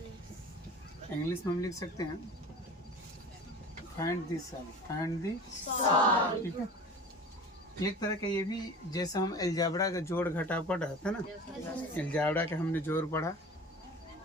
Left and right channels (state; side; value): normal; both; correlation 0.38